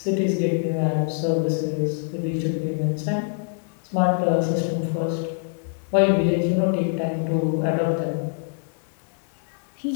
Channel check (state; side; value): silent; right; 62 dB below the other